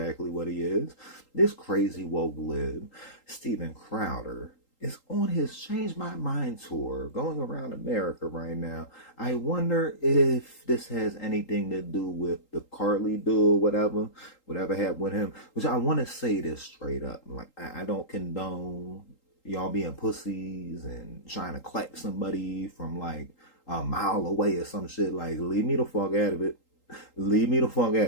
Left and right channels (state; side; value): late; right; 3.8 ms